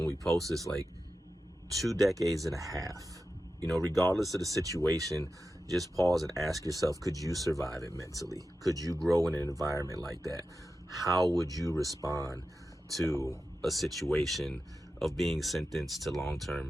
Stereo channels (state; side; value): normal; both; correlation 0.92